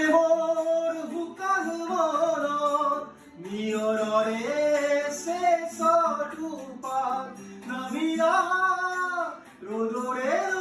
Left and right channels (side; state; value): both; identical; correlation 1.00